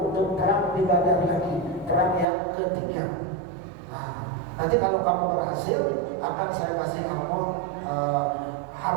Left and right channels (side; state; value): left; drops out; at 2.2 s